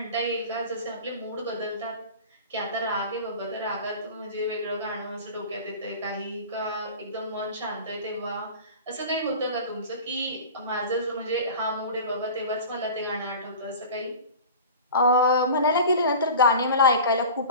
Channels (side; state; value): both; inverted; correlation -0.37